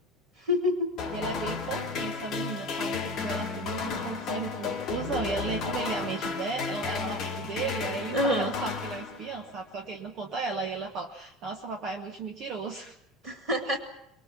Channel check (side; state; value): both; normal; correlation 0.31